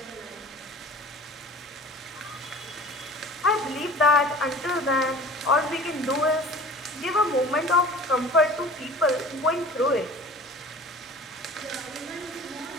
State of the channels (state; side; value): normal; both; correlation 0.43